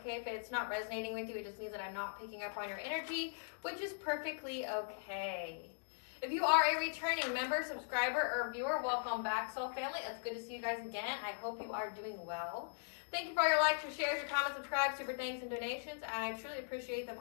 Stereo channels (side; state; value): right; silent; digital silence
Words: If it's not resonating with you, it just means that I'm not picking up on your energy, which is perfectly okay. If you are a returning member, subscriber, or viewer, welcome back, Soul Family. It's good to see you guys again. I hope you are doing well. Thank you for your likes, your shares, your comments, subscribes, super thanks, and donations. I truly appreciate them